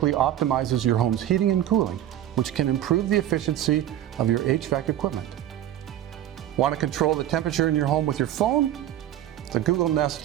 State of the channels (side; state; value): left; quieter; 12.0 dB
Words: optimizes your home's heating and cooling, which can improve the efficiency of your HVAC equipment. Want to control the temperature in your home with your phone? The Google